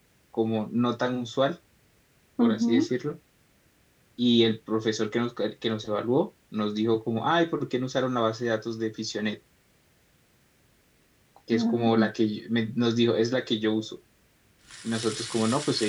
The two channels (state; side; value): identical; both; correlation 1.00